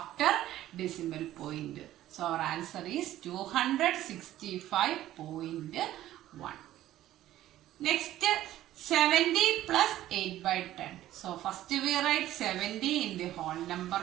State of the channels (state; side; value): quieter; left; 13.8 dB